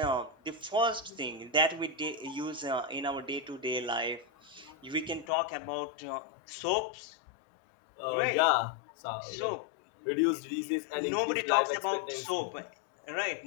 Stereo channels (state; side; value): drops out; right; at 5.2 s